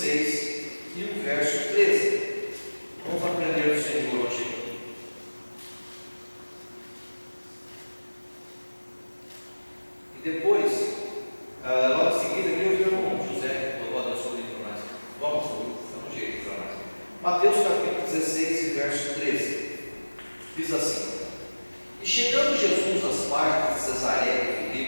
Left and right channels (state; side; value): inverted; both; correlation -1.00